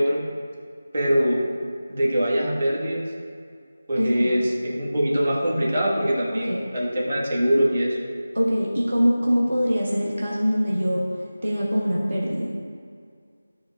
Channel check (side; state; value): both; inverted; correlation -0.96